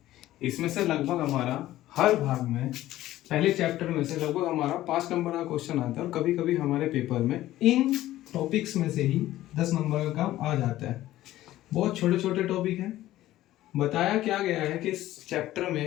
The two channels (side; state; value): right; quieter; 14.8 dB